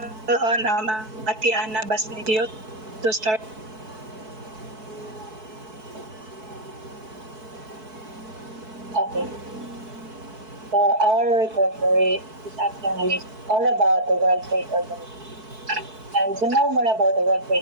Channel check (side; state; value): left; late; 4.6 ms